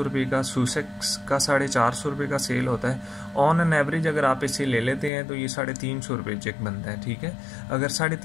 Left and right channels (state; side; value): drops out; right; at 5.1 s